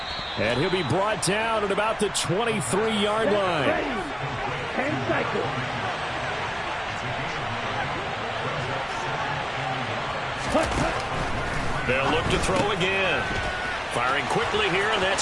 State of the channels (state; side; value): identical; both; correlation 1.00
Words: And he'll be brought down at about the 23-yard line. And cycle. They'll look to throw again. Firing quickly here, and that's